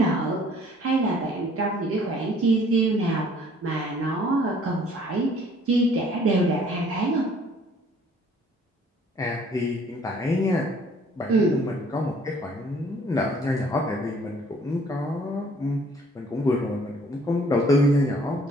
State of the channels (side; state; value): both; normal; correlation 0.58